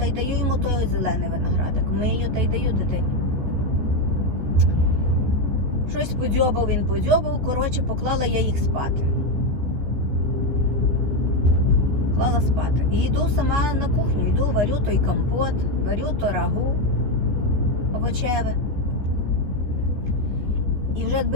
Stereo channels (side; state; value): left; late; 14 ms